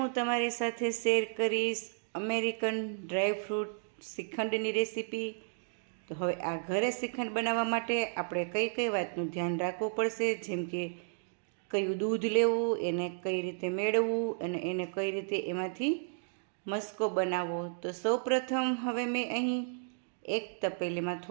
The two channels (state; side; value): silent; left; digital silence